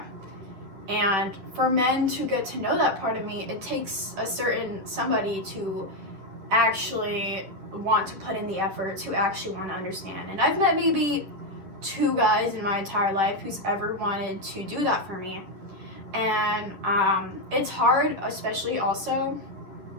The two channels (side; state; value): left; late; 10 ms